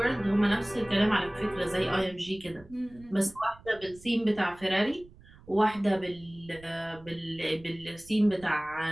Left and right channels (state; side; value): noise; right; rumble, 23 dB below the sound